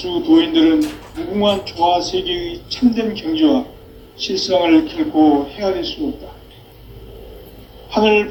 도인들은 무궁한 조화 세계의 참된 경지와 실상을 결코 헤아릴 수 없다. 하늘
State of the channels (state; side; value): identical; both; correlation 1.00